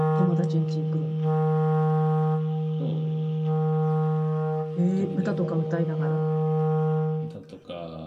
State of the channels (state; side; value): identical; both; correlation 1.00